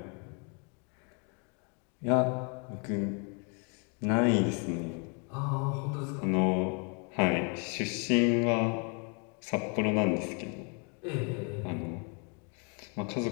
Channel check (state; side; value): quieter; right; 36.3 dB